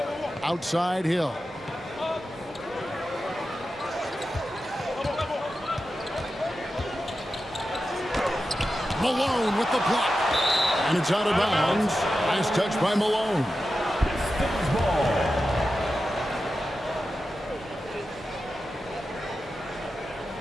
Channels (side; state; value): both; normal; correlation 0.91